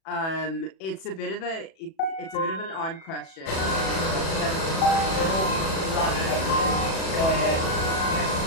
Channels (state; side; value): late; right; 37 ms